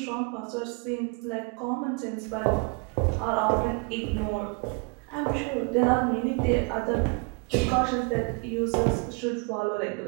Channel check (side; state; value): left; quieter; 32.5 dB